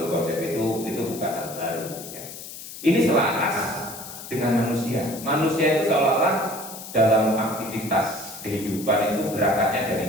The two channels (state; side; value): noise; left; hiss, 12 dB below the sound